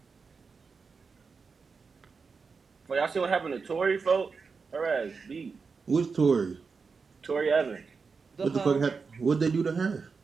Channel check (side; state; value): left; quieter; 5.0 dB